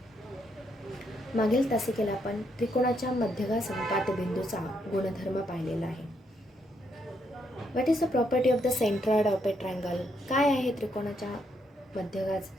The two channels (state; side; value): normal; both; correlation 0.76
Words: मागील तासिकेला आपण त्रिकोणाच्या मध्यगा संपात बिंदूचा गुणधर्म पाहिलेला आहे. What is the property of the centroid of a triangle? काय आहे त्रिकोणाच्या मध्यगा